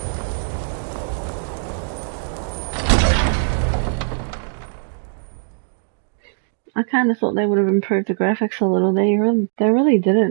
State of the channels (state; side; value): silent; left; digital silence